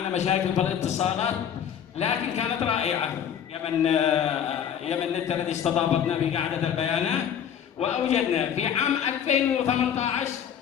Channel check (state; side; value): quieter; right; 8.8 dB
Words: مشاكل في الاتصالات، لكن كانت رائعه. يمن نت الذي استضافتنا في قاعده البيانات، واوجدنا في عام 2018